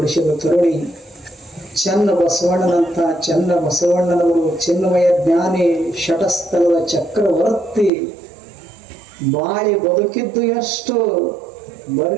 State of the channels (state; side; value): drops out; left; at 7.9 s